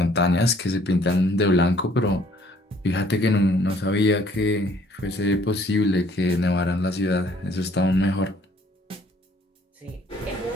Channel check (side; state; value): both; normal; correlation 0.60